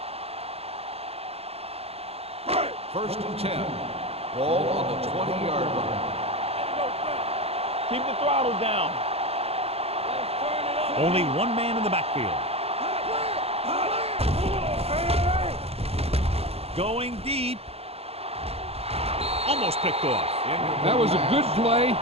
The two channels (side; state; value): left; late; 0.29 ms